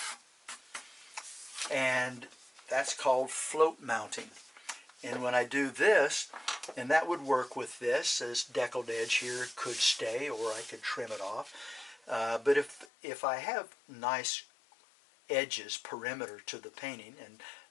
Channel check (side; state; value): right; drops out; at 12.9 s